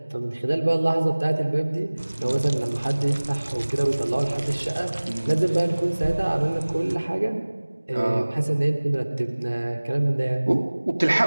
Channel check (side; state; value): both; inverted; correlation -1.00